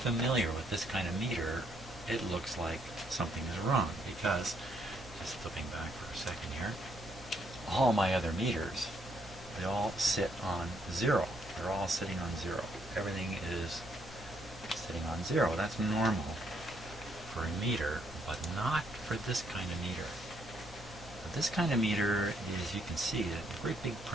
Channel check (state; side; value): normal; both; correlation 0.72